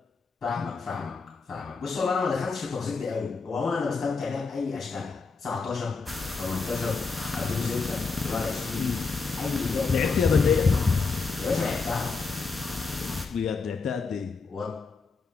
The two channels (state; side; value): quieter; right; 4.5 dB